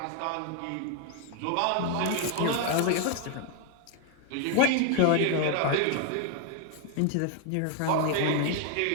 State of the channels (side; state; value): both; different; correlation 0.00